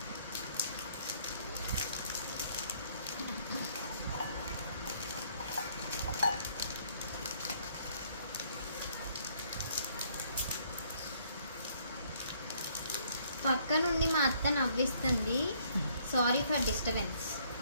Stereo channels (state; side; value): inverted; both; correlation -0.65